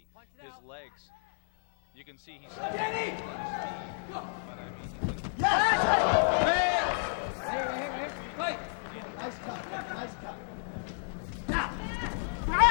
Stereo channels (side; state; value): right; silent; 57 dB below the other